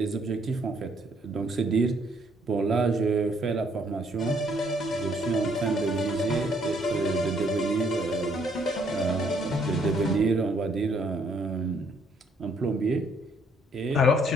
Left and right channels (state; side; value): normal; both; correlation 0.67